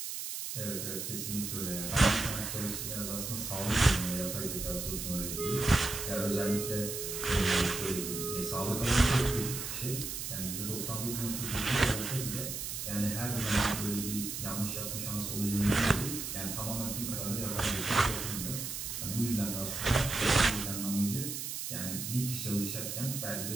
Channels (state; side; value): noise; right; hiss, 5 dB below the sound